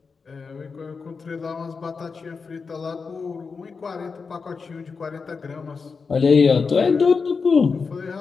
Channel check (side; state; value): right; quieter; 5.0 dB